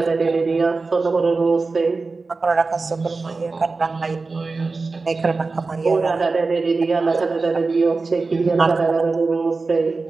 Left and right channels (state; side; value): quieter; left; 3.9 dB